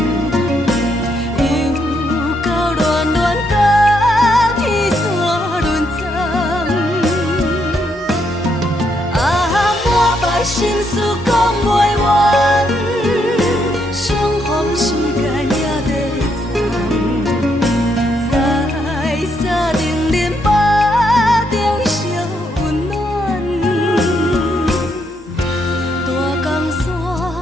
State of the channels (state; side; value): normal; both; correlation 0.76